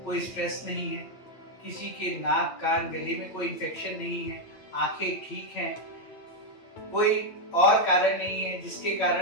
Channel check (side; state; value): right; late; 8.8 ms